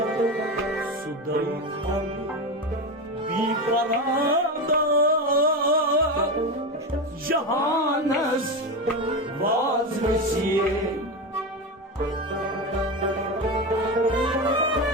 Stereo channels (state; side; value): normal; both; correlation 0.18